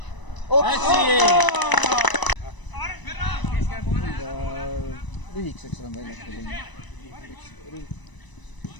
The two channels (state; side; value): late; right; 1.0 ms